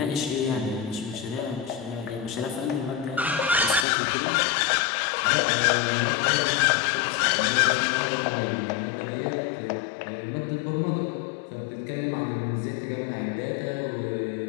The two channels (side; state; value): right; drops out; at 3.9 s